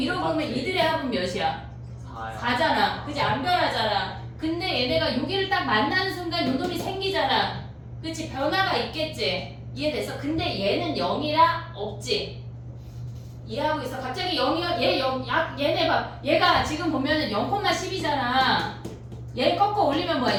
합은 몇이야? 4야. 4잖아. 그지? 안 변하잖아. 근데 얘네가 여기를 딱 만나는 순간 요 놈이 생기잖아. 그치? 변화가 있겠지? 이해됐어? 근데 얘는 0이라 없지? 이해하고 있어? 갑자기 0이야? 얘네 봐. 얘가 지금 보면은 0,10이잖아. 얘 꺾어 올리면 뭐야?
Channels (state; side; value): identical; both; correlation 1.00